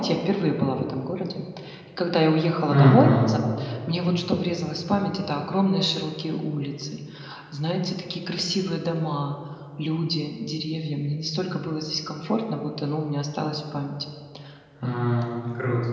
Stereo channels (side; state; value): both; identical; correlation 1.00